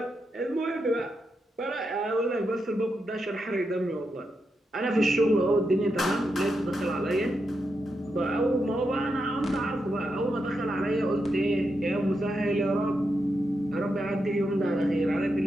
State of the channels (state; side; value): normal; both; correlation 0.85